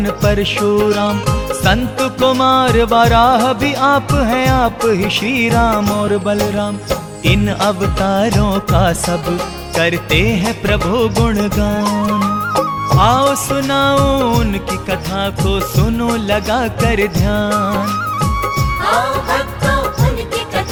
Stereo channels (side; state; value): both; identical; correlation 1.00